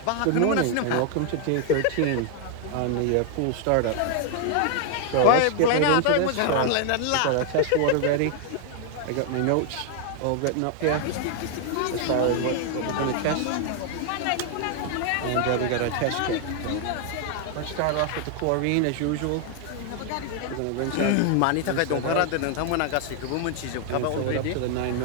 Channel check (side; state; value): both; different; correlation 0.00